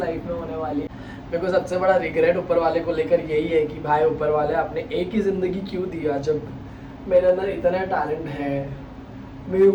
में होने वाली है। मेरे को सबसे बड़ा रिग्रेट ऊपर वाले को लेकर यही है कि भाई ऊपर वाले आपने एक ही ज़िंदगी क्यों दिया, जब मेरे अंदर इतना टैलेंट है, मेरे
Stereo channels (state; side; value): identical; both; correlation 1.00